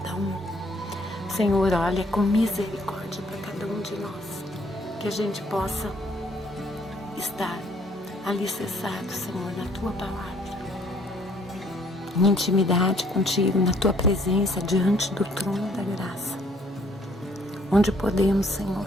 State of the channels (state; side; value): normal; both; correlation 0.63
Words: um. Senhor, olha com misericórdia para cada um de nós, que a gente possa estar alicerçado, Senhor, na tua palavra, em intimidade contigo, na tua presença, diante do trono da graça, onde podemos, Senhor,